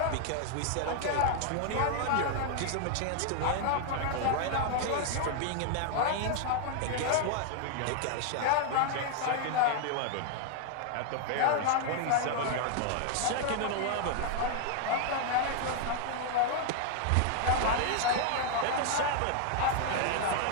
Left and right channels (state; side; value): different; both; correlation 0.00